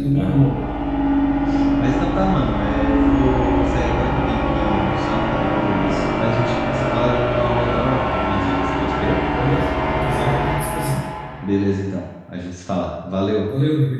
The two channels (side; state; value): both; identical; correlation 1.00